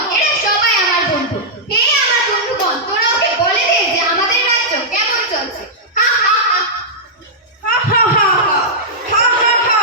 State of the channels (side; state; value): both; normal; correlation -0.10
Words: এরা সবাই আমার বন্ধু। হে আমার বন্ধুগণ, তোরা ওকে বলে দে যে আমাদের রাজ্য কেমন চলছে।